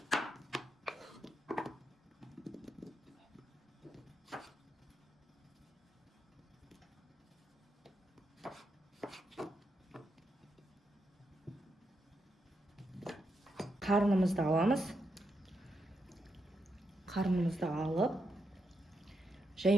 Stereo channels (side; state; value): both; normal; correlation 0.83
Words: Қарынымызды аламыз. Қарынымызды алып,